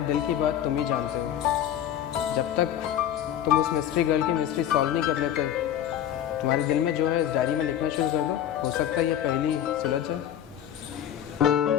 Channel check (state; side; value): quieter; right; 10.7 dB